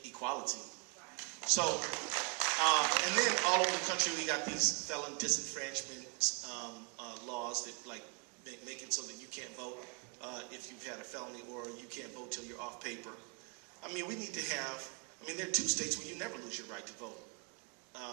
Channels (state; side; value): quieter; left; 34.2 dB